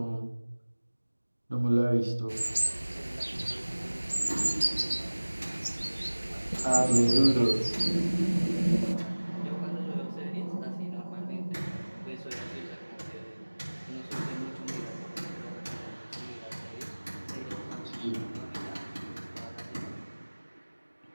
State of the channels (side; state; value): both; inverted; correlation -1.00